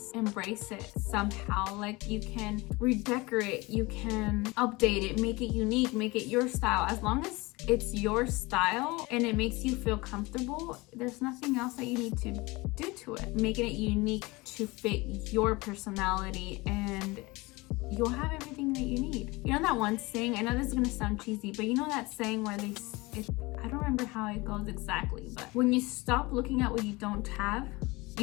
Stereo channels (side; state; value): right; quieter; 23.2 dB